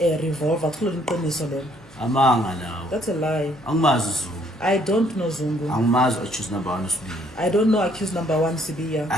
revolver kulo iqiniso lelo. Amanga lawo. That's a lie. Angimazi Zungu. I don't know Zungu. Angimazi accused number 1 usibili. I don't know accused number 1 Sibiya.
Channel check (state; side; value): normal; both; correlation 0.65